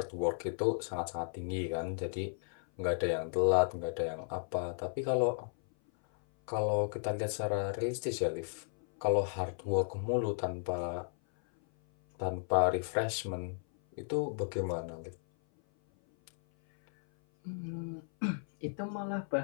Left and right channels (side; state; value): right; silent; 55 dB below the other